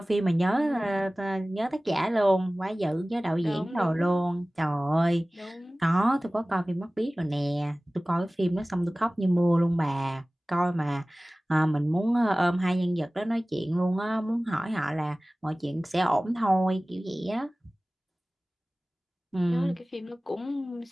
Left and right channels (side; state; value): both; normal; correlation 0.98